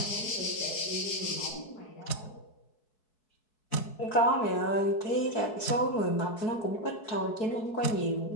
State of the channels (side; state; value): right; late; 4.7 ms